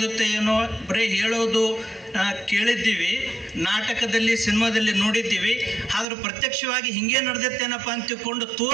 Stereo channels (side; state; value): left; drops out; at 6.1 s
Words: ಏನೋ ಬರೀ ಹೇಳೋದು ಕೇಳಿದ್ದೀವಿ, ನಾಟಕದಲ್ಲಿ ಸಿನಿಮಾದಲ್ಲಿ ನೋಡಿದ್ದೀವಿ. ಆದರೂ ಪ್ರತ್ಯಕ್ಷವಾಗಿ ಹಿಂಗೆ ನಡೆದತ್ತೇನಪ್ಪ ಅಂತ ತಿಳ್ಕೊಂಡು